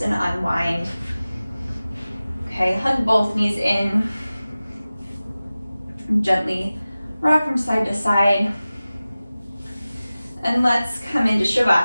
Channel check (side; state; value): both; inverted; correlation -0.97